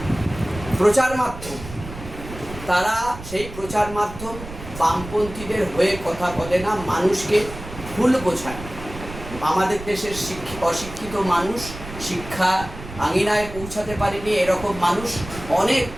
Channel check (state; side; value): noise; right; rumble, 12 dB below the sound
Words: প্রচার মাধ্যম, তারা সেই প্রচার মাধ্যম বামপন্থীদের হয়ে কথা বলে না, মানুষকে ভুল বোঝায়। আমাদের দেশের অশিক্ষিত মানুষ শিক্ষা আঙিনায় পৌঁছাতে পারেনি, এরকম মানুষ